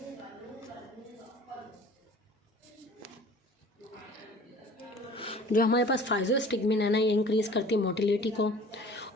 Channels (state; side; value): normal; both; correlation 0.46